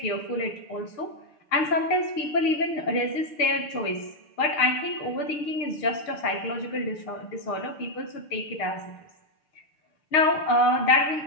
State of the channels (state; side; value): late; right; 6.6 ms